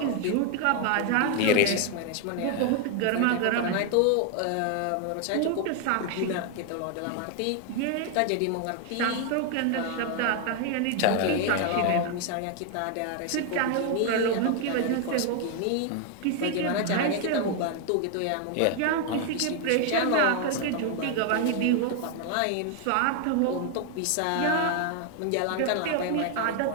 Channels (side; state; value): both; different; correlation 0.01